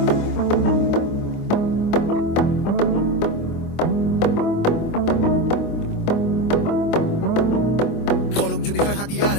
কলম যদি হয় হাতিয়ার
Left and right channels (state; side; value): late; right; 24 ms